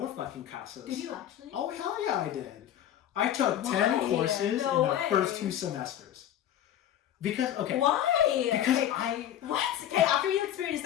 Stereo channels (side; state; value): right; quieter; 11.2 dB